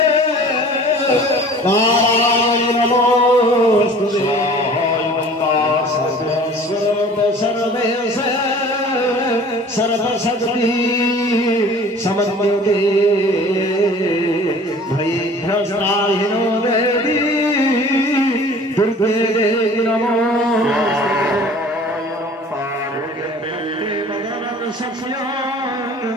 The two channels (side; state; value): both; normal; correlation 0.47